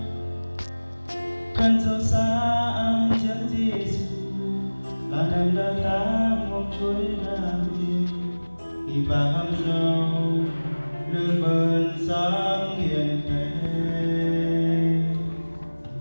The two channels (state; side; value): inverted; both; correlation -1.00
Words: khăn dấu xa ang chân Giêsu là nằm đó ta một chuỗi ra đi khi bà hâm dâu lương bơn sáng hiền thế